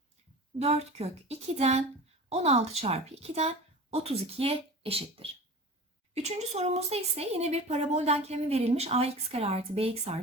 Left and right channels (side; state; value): both; normal; correlation 0.35